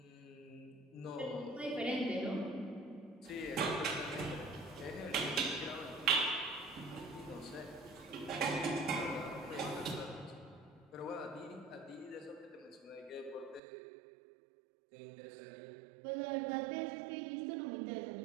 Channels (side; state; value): left; drops out; at 13.6 s